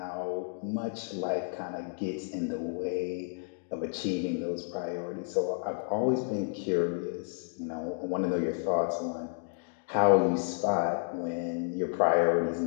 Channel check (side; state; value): right; silent; digital silence